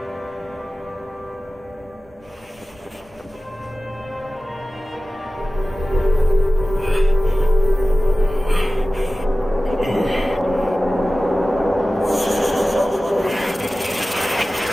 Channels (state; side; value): normal; both; correlation 0.96